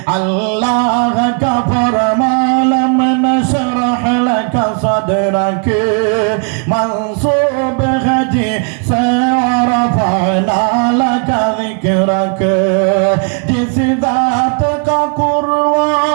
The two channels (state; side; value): quieter; left; 39.3 dB